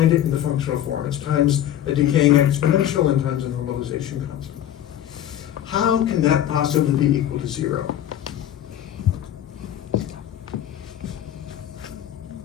it in the functional form. It's times a decaying exponential and times a normalization constant. How can that possibly be equal to 0?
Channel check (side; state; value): right; quieter; 11.3 dB